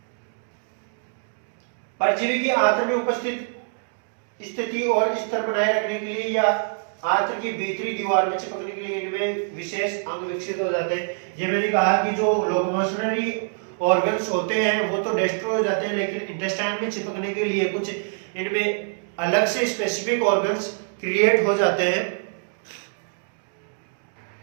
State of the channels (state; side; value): silent; left; digital silence